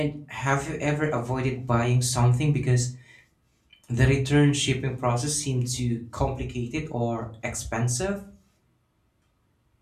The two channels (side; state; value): both; identical; correlation 1.00